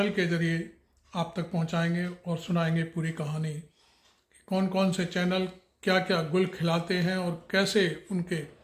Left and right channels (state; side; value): identical; both; correlation 1.00